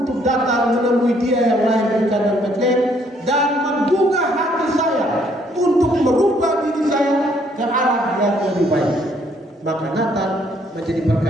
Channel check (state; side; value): normal; both; correlation 0.66